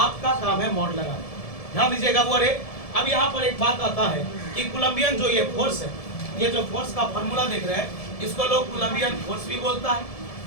आपका काम है मॉड लगाना। ध्यान दीजिएगा वो। अब यहाँ पर एक बात आता है कि कोलंबियन जो ये फोर्स है, ये जो फोर्स का फॉर्मूला देख रहे हैं, इसको लोग कोलंबियन फोर्स भी बोलता है।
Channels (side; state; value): right; late; 1.7 ms